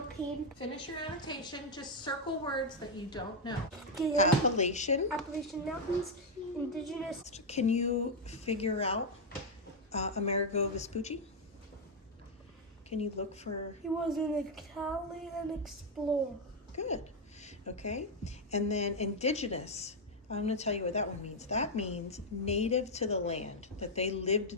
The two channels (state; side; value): normal; both; correlation 0.01